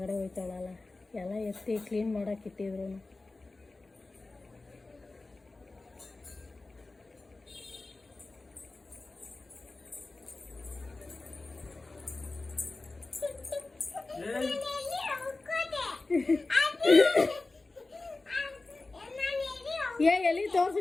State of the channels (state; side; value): quieter; right; 3.3 dB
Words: ಹೋಯ್ತಾಳಲ್ಲ, ಎಲ್ಲ ಎತ್ತಿ ಕ್ಲೀನ್ ಮಾಡಕ್ಕೆ ಇಟ್ಟಿದ್ರು. ಎಲ್ಲಿ